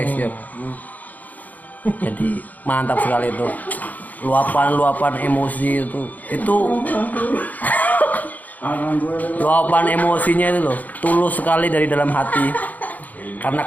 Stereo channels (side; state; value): right; late; 0.080 ms